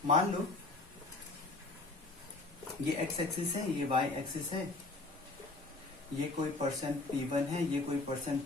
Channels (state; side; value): quieter; right; 3.2 dB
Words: मान लो ये एक्स एक्सिस है, ये वाई एक्सिस है, ये कोई पर्सन P1 है, ये कोई पर्सन